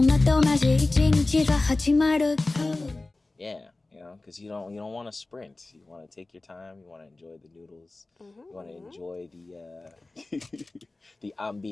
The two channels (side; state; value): right; quieter; 3.1 dB